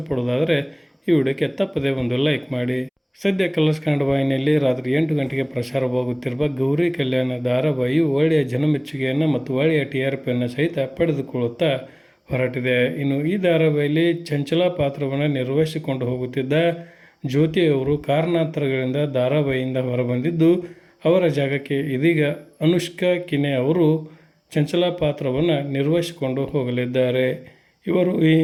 ಈ ವಿಡಿಯೋಕ್ಕೆ ತಪ್ಪದೇ ಒಂದು ಲೈಕ್ ಮಾಡಿ. ಸದ್ಯ ಕಲರ್ಸ್ ಕನ್ನಡ ವಾಹಿನಿಯಲ್ಲಿ ರಾತ್ರಿ 8 ಗಂಟೆಗೆ ಪ್ರಸಾರವಾಗುತ್ತಿರುವ ಗೌರಿ ಕಲ್ಯಾಣ ಧಾರಾವಾಹಿಯು ಒಳ್ಳೆಯ ಜನಮೆಚ್ಚುಗೆಯನ್ನು ಮತ್ತು ಒಳ್ಳೆಯ TRPಯನ್ನು ಸಹಿತ ಪಡೆದುಕೊಳ್ಳುತ್ತಾ ಹೊರಟಿದೆ. ಇನ್ನು ಈ ಧಾರಾವಾಹಿಯಲ್ಲಿ ಚಂಚಲ ಪಾತ್ರವನ್ನು ನಿರ್ವಹಿಸಿಕೊಂಡು ಹೋಗುತ್ತಿದ್ದ ಜ್ಯೋತಿಯವರು ಕಾರಣಾಂತರಗಳಿಂದ ಧಾರಾವಾಹಿಯಿಂದ ಹೊರಬಂದಿದ್ದು, ಅವರ ಜಾಗಕ್ಕೆ ಇದೀಗ ಅನುಷ್ಕಾ ಕಿನೆ ಅವರು ಚಂಚಲ ಪಾತ್ರವನ್ನು ನಿರ್ವಹಿಸಿಕೊಂಡು ಹೋಗಲಿದ್ದಾರೆ. ಇವರು ಈ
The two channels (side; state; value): both; identical; correlation 1.00